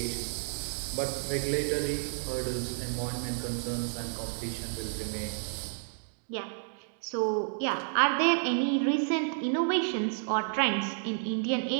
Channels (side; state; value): left; silent; digital silence